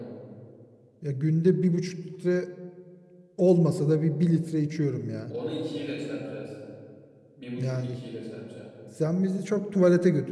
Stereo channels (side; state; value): both; identical; correlation 1.00